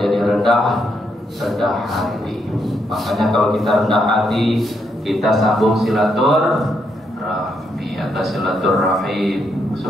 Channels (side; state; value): both; normal; correlation 0.78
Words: rendah hati. Makanya kalau kita rendah hati, kita sambung silaturahmi atau silaturahim.